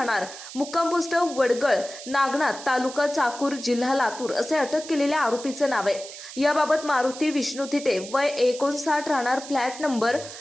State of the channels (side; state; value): right; noise; hiss, 13 dB below the sound